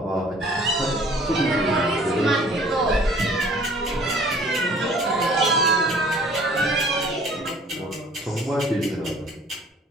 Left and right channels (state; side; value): normal; both; correlation 0.53